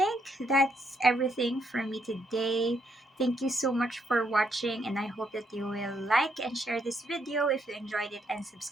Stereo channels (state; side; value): normal; both; correlation 0.75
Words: that's everything for me today. Thank you so much for watching, and I hope that you will like and share this video if you enjoyed it, and